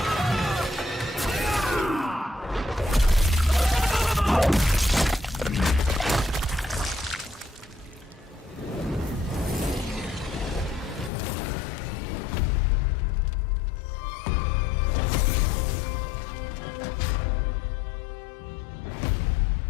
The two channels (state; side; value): drops out; right; at 11.1 s